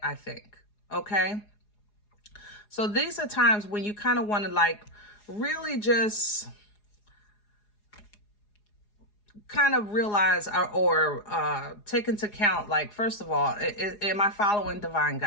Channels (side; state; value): right; late; 4.8 ms